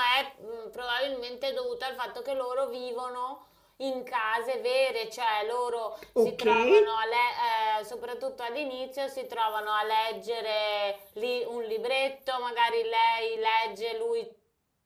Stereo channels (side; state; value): both; identical; correlation 1.00